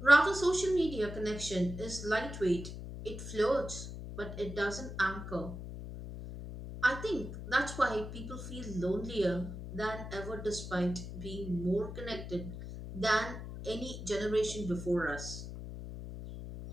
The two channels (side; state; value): left; noise; hum, 9 dB below the sound